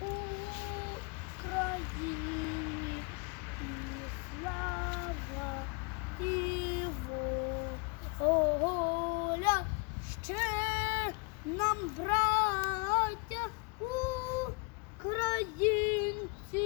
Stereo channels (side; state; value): right; quieter; 31.1 dB